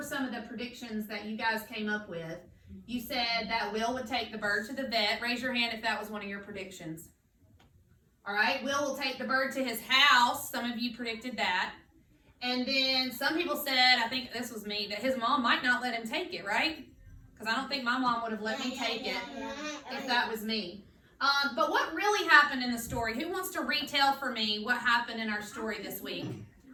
some of the predictions that you guys came up with. You said that Will would take the bird to the vet. Raise your hand if that was one of your predictions. All right. Will take the bird to his house. Some of you predicted that. And then some people said, I think this was me, that his mom might not let him take it, right? Because I don't think my mom would have let me take it if that was me. But what really happened in the story? Who wants to retell for me what happened in our story this week?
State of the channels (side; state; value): both; identical; correlation 1.00